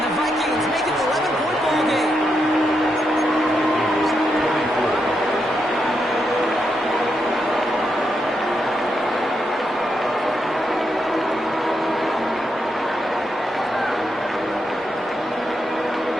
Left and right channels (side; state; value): both; normal; correlation 0.82